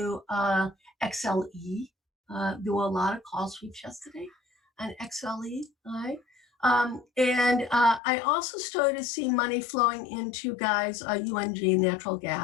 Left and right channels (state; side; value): drops out; right; at 8.0 s